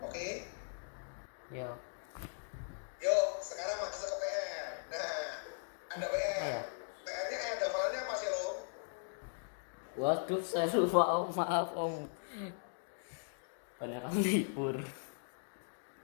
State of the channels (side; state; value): right; silent; digital silence